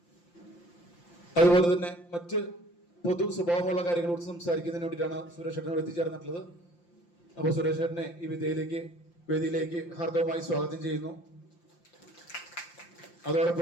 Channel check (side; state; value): right; late; 5.8 ms